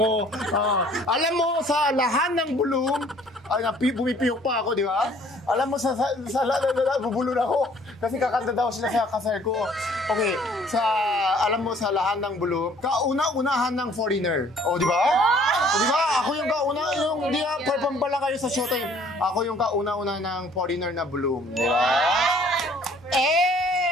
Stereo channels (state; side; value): normal; both; correlation 0.57